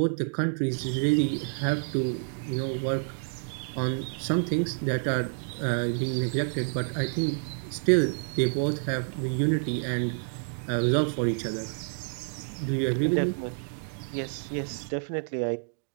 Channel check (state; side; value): silent; left; 59 dB below the other